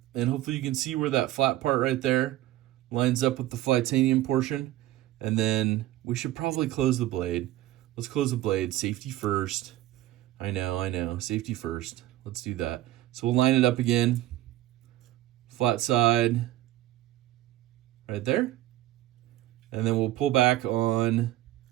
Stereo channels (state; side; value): quieter; left; 14.9 dB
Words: and hopefully you can see where that flat part right there lines up with the Flytanium portion. And then we should probably close the blade. Let's close the blade. Safety first. I know. Safety first. Let's do that. So we'll line it up again. Flat side right there. And then we'll pull back on